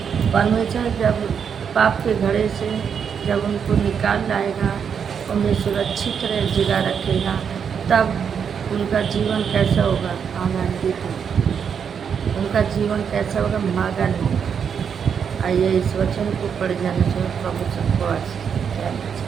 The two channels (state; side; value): quieter; left; 7.2 dB